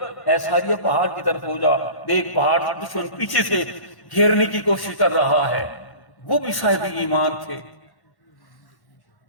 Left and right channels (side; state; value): right; late; 1.1 ms